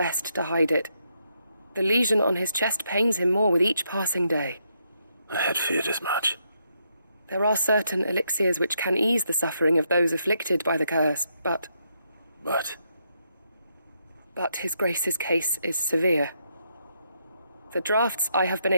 to hide it. The lesion on his chest pains him more with each passing day. I had feared as much. There are certain elixirs which can ease the suffering of those afflicted by the curse, but his Grace's case is severe. The drafts I have been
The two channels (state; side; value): inverted; both; correlation -0.78